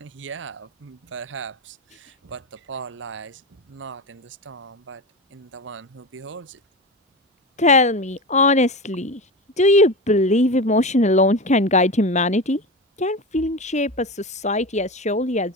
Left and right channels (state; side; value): normal; both; correlation 0.24